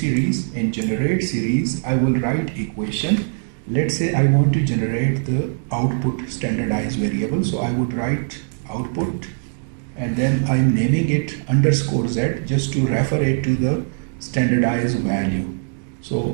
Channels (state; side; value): silent; left; 65 dB below the other